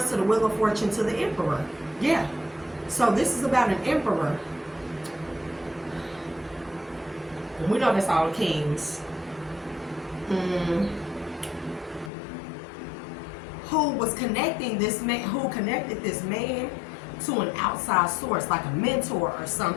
to the Wheel of Fortune to the Emperor. Yeah. So this is about an Emperor. And we know that's all kings. Who was connecting this man, who connected this man to an outside source, like a mentor or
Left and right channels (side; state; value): right; drops out; at 12.1 s